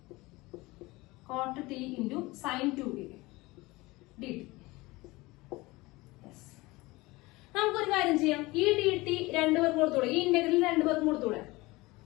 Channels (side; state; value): right; quieter; 21.6 dB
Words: Cot t into sine 2a dt. നമുക്കൊരു കാര്യം ചെയ്യാം. ഈ dt രണ്ടുപേർക്കും കൊടുത്തൂടെ? ഈ ഇന്റഗ്രൽ രണ്ടുപേർക്കും കൊടുത്തൂടെ?